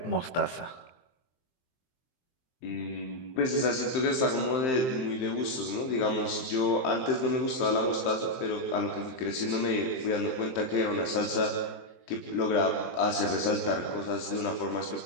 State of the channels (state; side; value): late; right; 23 ms